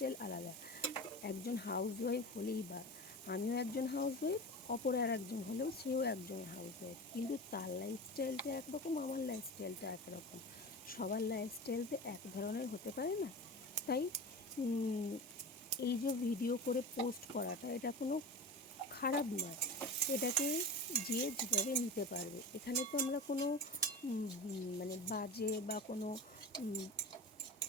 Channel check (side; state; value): both; normal; correlation 0.30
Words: আলাদা। একজন হাউসওয়াইফ হলেই বা, আমিও একজন হাউসওয়াইফ, অপর আর একজন হলেও সেও একজন হাউসওয়াইফ, কিন্তু তার লাইফস্টাইলটা একরকম, আমার লাইফস্টাইলটা একরকম। সবার লাইফস্টাইল তো এক ধরনের হতে পারে না। তাই এই যে ভিডিও করে পোস্ট করাটা, এটা কোনো খারাপ নয়। এটাকে যে যেভাবে নিতে পারবে। এখানে তো আমরা কোনো মানে বাজে বা কোনো